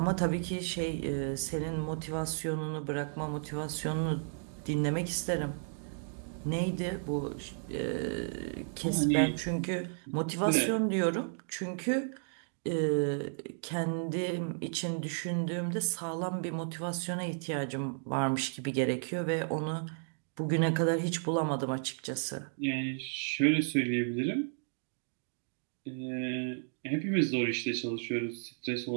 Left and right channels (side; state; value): left; silent; digital silence